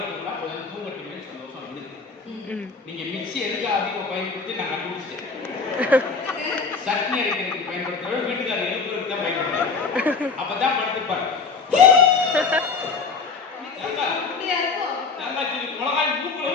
கொஞ்சம் தூங்கட்டுமே சந்தோஷம் இருக்கு. நீங்க மிக்சி எதுக்கு அதிகம் பயன்படுத்தி நான் கண்டுபிடிச்சிட்டேன். சட்னி அரைக்கிறதுக்கு பயன்படுத்துற வீட்டுக்காரர் எழுப்புறதுக்கு தான் பயன்படுத்துறாரு. அப்பதான் படுத்துப்பாரு. மிளகாய்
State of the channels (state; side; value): quieter; right; 4.7 dB